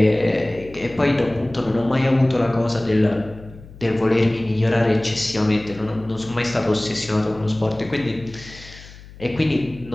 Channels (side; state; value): left; noise; hum, 19 dB below the sound